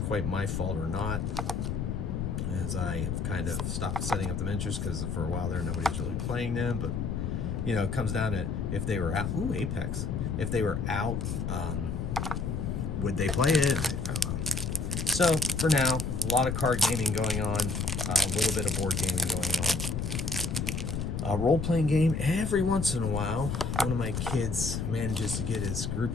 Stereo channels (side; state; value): left; noise; rumble, 2 dB below the sound